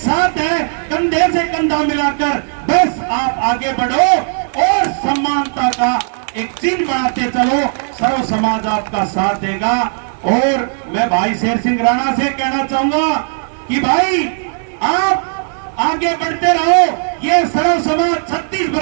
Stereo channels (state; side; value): silent; left; 59 dB below the other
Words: है, कंधे से कंधा मिलाकर। बस आप आगे बढ़ो और समानता का एक चिन्ह बनाते चलो, सर्व समाज आपका साथ देगा। और मैं भाई शेर सिंह राणा से कहना चाहूंगा कि भाई आप आगे बढ़ते रहो, ये सर्व समाज 36